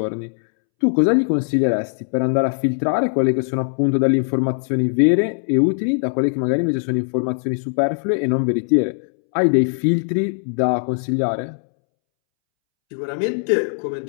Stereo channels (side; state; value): right; silent; 66 dB below the other